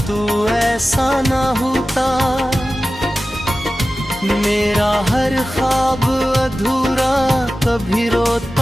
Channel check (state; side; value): normal; both; correlation 0.95